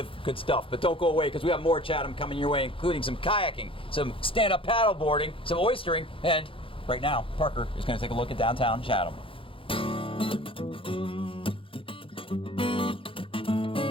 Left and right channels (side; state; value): right; late; 0.26 ms